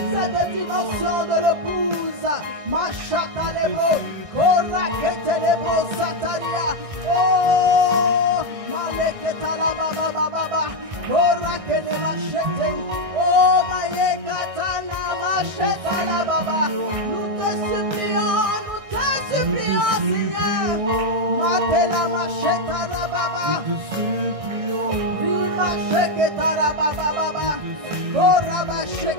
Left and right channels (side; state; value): left; late; 1.6 ms